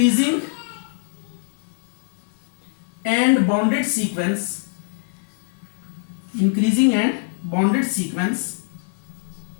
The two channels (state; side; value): silent; right; 62 dB below the other